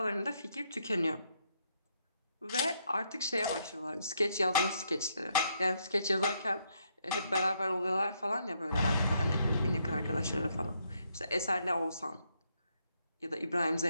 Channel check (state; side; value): inverted; both; correlation -0.76